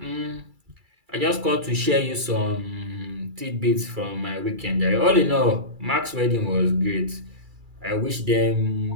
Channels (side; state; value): left; late; 2.3 ms